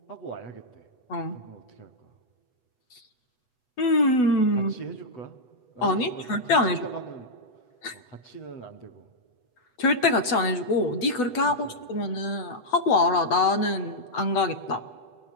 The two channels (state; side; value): late; right; 8.1 ms